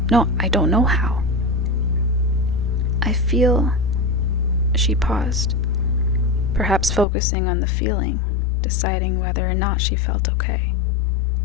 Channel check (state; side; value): drops out; right; at 7.1 s